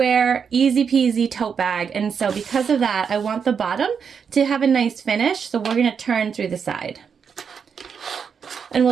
easy peasy tote bag. And so because of that, I want the bottom to have a nice finish. So we're gonna turn through the side. And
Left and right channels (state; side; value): quieter; left; 6.6 dB